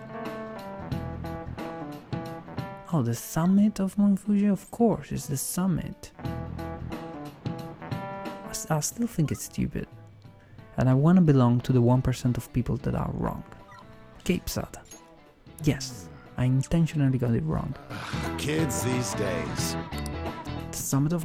Oh, the summit of Mount Fuji? Of course, it's the summit. I still think it's stupid. And I want to belong to the 1% of people that are wrong. Cape Sada. Yes, I intentionally got it wrong. Kids these days. The summit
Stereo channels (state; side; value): identical; both; correlation 1.00